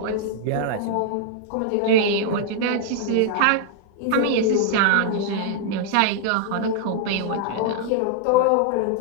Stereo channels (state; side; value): different; both; correlation -0.01